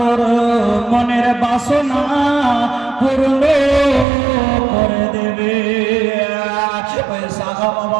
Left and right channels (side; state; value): left; drops out; at 4.0 s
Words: মনের বাসনা পূর্ণ করে দেবে ওই সাহাবা